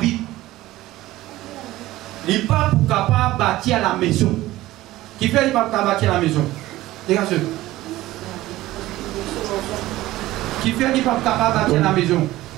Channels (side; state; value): left; quieter; 16.6 dB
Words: Il n'est pas pour capable bâtir la maison. Qui fait il n'est pas pour bâtir la maison? Dégagez. Qui fait il n'est pas pour capable bâtir la maison?